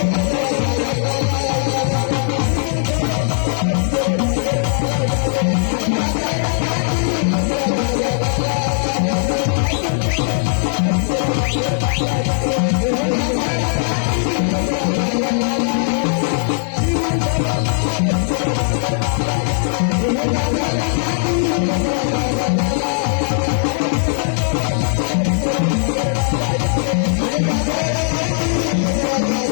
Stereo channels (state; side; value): silent; right; 61 dB below the other